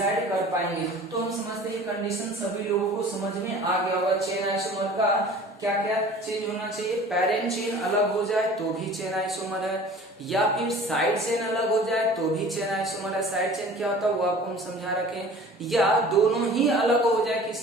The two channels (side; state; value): both; normal; correlation 0.45